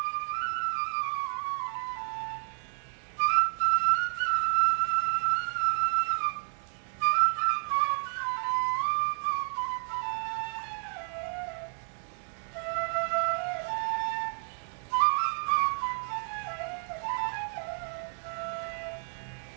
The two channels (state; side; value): silent; left; 57 dB below the other